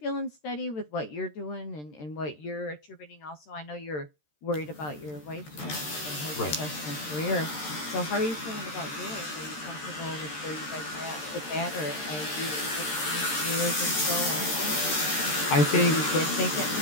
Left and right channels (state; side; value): late; right; 13 ms